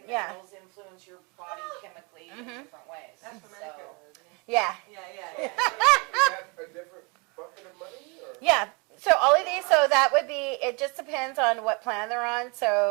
Yeah. minerals influence your body chemically in different ways. That's for So- Medicare, isn't it? Yeah. Yeah. Is that a different bucket of money? Or? Yeah. So all of these, so that would be, it just depends on what plan they're on.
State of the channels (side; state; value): left; quieter; 31.1 dB